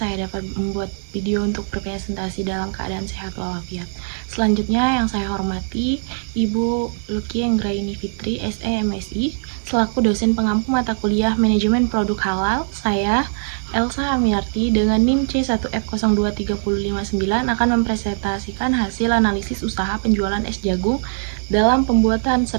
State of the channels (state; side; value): silent; left; digital silence